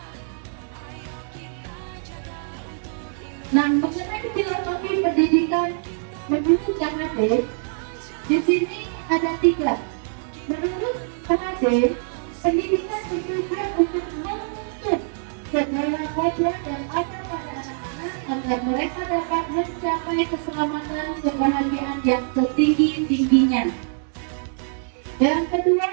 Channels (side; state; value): left; silent; digital silence